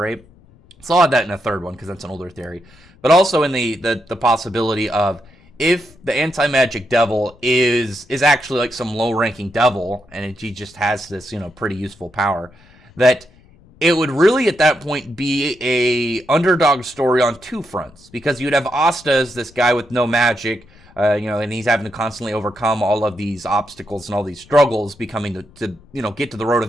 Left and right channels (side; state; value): left; noise; rumble, 27 dB below the sound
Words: So I'll add that in a third one because that's an older theory. But also in the possibility of, if the anti-magic devil is actually like some low-ranking devil, and he just has this pretty useful power, that it would really at that point be a underdog story on 2 fronts, because you'd have Asta as this guy with no magic, and he's having to constantly overcome all of these obstacles and all these struggles, becoming to get to the road